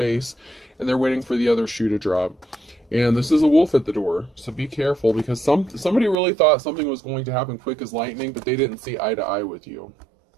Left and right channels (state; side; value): drops out; left; at 6.2 s